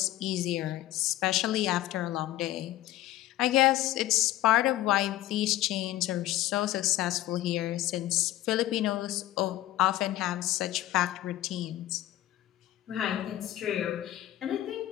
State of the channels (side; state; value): right; quieter; 14.8 dB